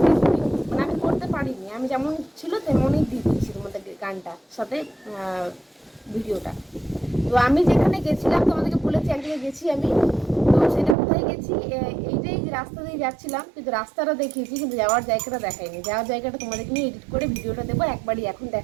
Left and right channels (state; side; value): drops out; left; at 11.0 s